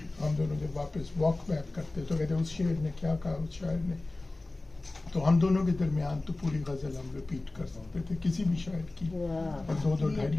हम दोनों जब वापस वॉक बैक करते तो कहते उस शेर ने क्या कहा, उस शायर ने, तो हम दोनों के दरमियान तो पूरी गज़ल हम रिपीट कर सकते थे किसी भी शायर की, और 2-2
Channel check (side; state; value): right; quieter; 3.0 dB